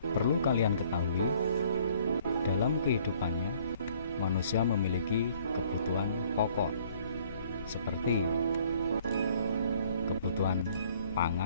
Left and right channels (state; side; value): inverted; both; correlation -0.59